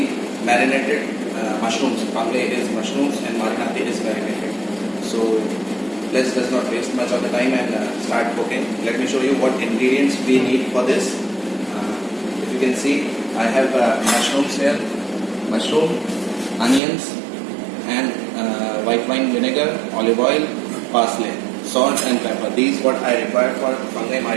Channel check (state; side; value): drops out; left; at 16.8 s